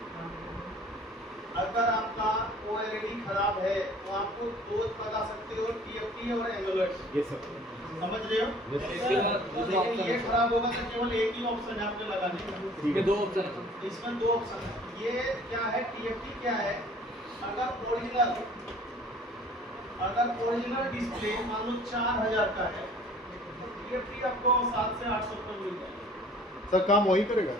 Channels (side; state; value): both; normal; correlation 0.51